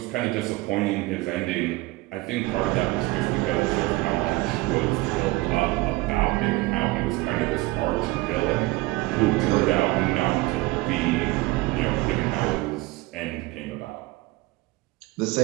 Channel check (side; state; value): left; quieter; 20.8 dB